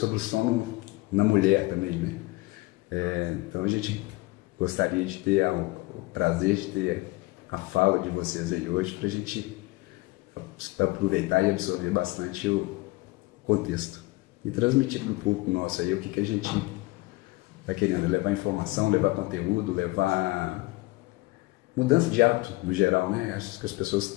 o sono na mulher também, né? Então a gente gostaria de ter o prazer de ter a fala de vocês aí hoje para a gente aproveitar e absorver bastante o contexto e transmitir para o público nosso aí o que a gente está querendo, levar informação, levar conteúdo, levar mudança de hábito no geral, né? Acho que as pessoas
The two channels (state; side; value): quieter; right; 21.7 dB